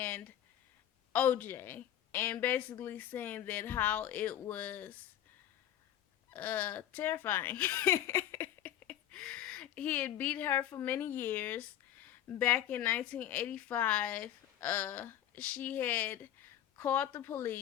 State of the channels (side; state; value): right; quieter; 11.4 dB